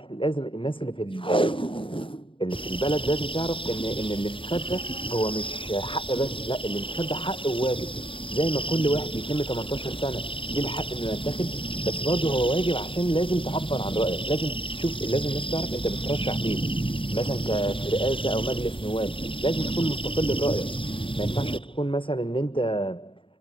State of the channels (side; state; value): right; late; 0.25 ms